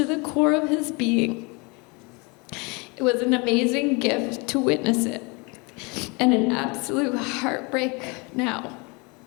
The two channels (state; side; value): quieter; right; 29.2 dB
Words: the core of his being. It was an amazing gift to witness it, and an absolute heartbreak now,